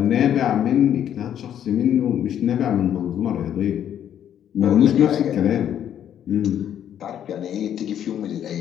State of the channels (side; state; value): right; quieter; 10.0 dB